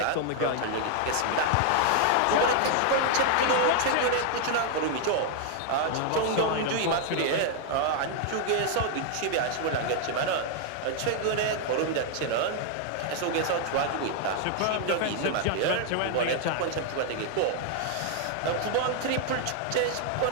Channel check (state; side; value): different; both; correlation 0.00